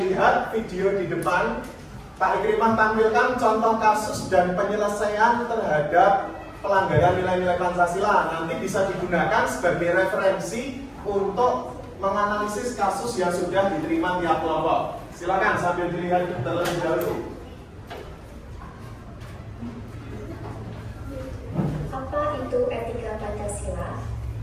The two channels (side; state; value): both; identical; correlation 1.00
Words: video di depan. Pak Ikrimah tampilkan contoh kasus dan penyelesaian terhadap pelanggaran nilai-nilai Pancasila. Nanti bisa digunakan sebagai referensi untuk menganalisis kasus yang sudah diterima tiap kelompok. Silakan sambil dilihat terlebih dahulu. Apa itu etika Pancasila?